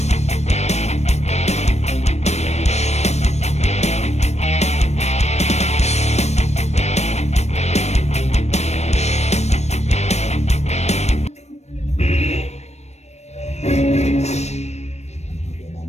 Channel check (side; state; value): right; late; 0.32 ms